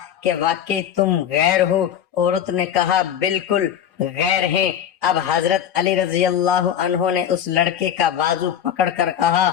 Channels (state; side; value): quieter; right; 9.5 dB